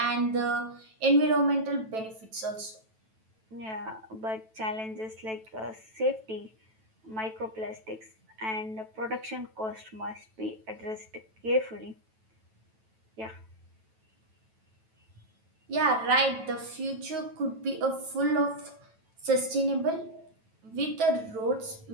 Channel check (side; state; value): left; late; 9.1 ms